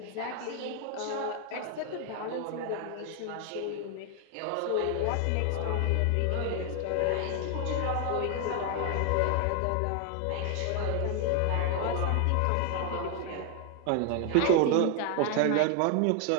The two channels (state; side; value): different; both; correlation 0.00